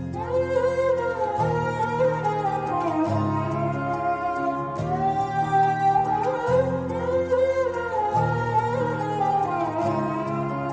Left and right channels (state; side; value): identical; both; correlation 1.00